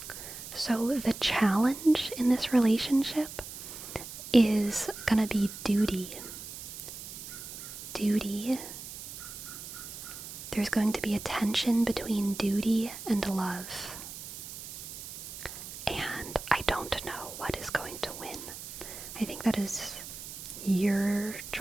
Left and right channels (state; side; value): noise; right; hiss, 11 dB below the sound